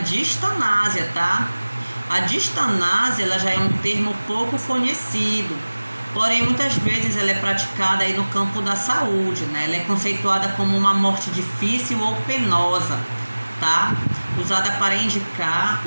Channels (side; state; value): both; inverted; correlation -1.00